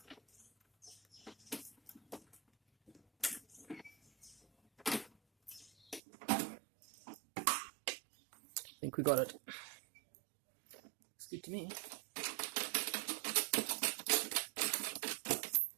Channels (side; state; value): left; drops out; at 6.0 s